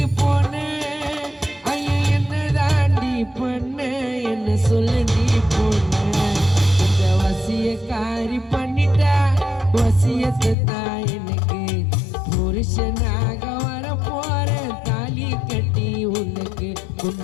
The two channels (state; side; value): drops out; right; at 10.6 s